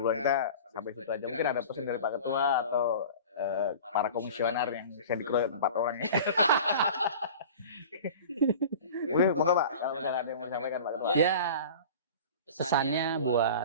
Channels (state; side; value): inverted; both; correlation -0.38